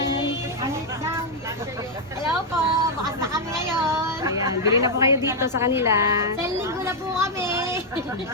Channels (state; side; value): normal; both; correlation -0.01